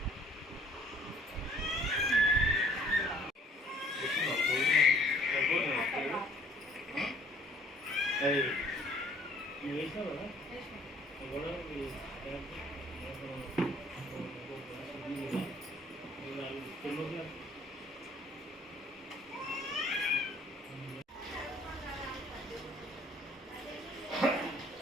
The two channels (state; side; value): normal; both; correlation 0.58